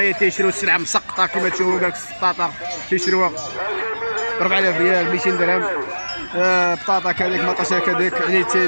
تيشريو السلعه مسقطه كما تشوفوا. قالك السطاطا تيشريوها 4000 ريال 200 درهم، بطاطا كذلك مطاشه كذلك. يعني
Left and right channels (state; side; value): inverted; both; correlation -1.00